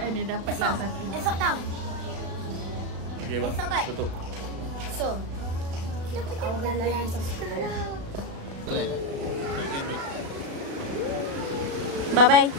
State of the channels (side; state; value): left; late; 36 ms